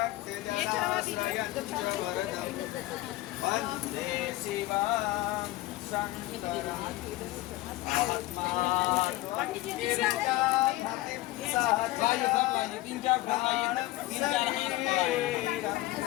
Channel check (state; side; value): quieter; right; 17.5 dB